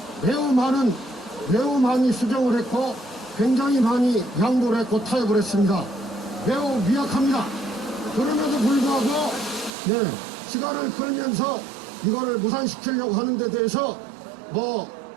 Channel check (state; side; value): drops out; left; at 9.8 s